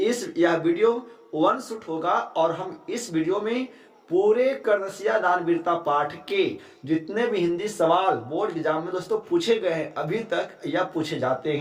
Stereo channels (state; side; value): identical; both; correlation 1.00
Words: यह वीडियो वन शूट होगा और हम इस वीडियो में पूरे कर्णसिया दान वीरता पाठ के जितने भी हिंदी सवाल बोर्ड एग्जाम में दोस्तों पूछे गए हैं अभी तक या पूछे जाते